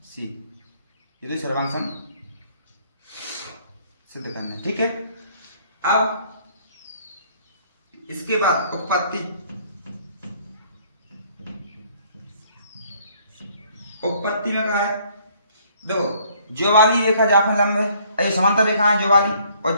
C, ये तो सर्वांग समूह सिद्ध करना है, ठीक है। अब इसके बाद उत्पत्ति, उत्पत्ति में कहा है, देखो जो वाली रेखा जाकर लंब है, ये समांतर रेखा है, जो वाली और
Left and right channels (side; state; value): both; inverted; correlation -0.61